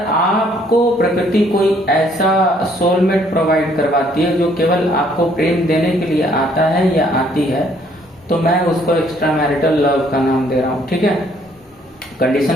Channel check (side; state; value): both; normal; correlation 0.64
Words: आपको प्रकृति कोई ऐसा सोलमेट प्रोवाइड करवाती है जो केवल आपको प्रेम देने के लिए आता है या आती है, तो मैं उसको एक्स्ट्रा मैरिटल लव का नाम दे रहा हूं, ठीक है।